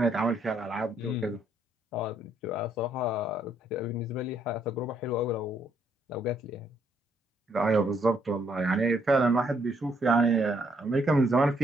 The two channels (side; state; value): both; normal; correlation 0.70